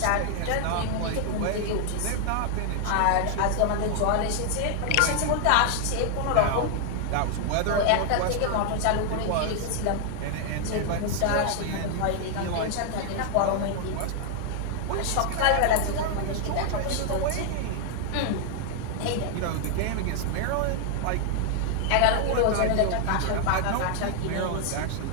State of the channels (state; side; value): different; both; correlation 0.00